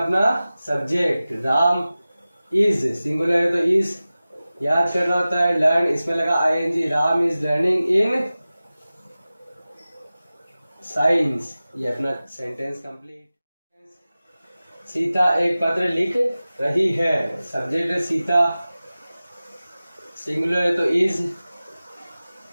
सब्जेक्ट। राम इज, सिंगुलर है तो इज। याद करना होता है लर्न, इसमें लगा i n g. Ram is learning in science. ये अपना सेंटेंस कंप्लीट। सीता एक पत्र लिख रही है, सब्जेक्ट है सीता, सिंगुलर है तो इज।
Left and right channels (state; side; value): inverted; both; correlation -0.96